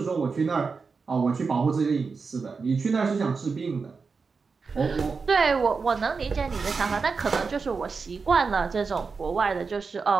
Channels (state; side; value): quieter; left; 4.8 dB